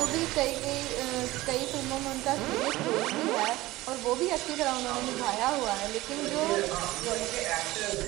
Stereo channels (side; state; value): left; quieter; 18.2 dB